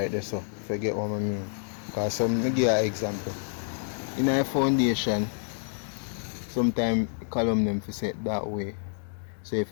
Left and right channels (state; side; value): silent; right; digital silence